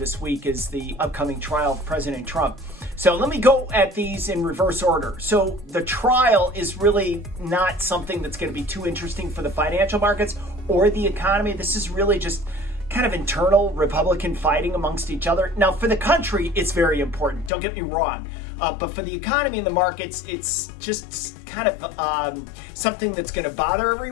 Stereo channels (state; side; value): drops out; right; at 17.5 s